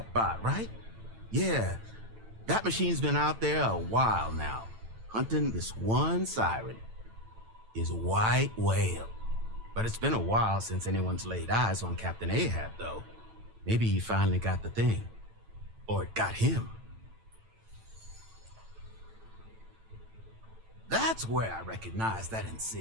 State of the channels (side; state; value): left; late; 9.0 ms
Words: bot, right? Yeah, that machine's been out there a while now, hunting this one siren, his white whale. But it's been a while since anyone's laid eyes on Captain Ahab, though. Maybe he finally got the thing. Or it got him. That's where I recognize that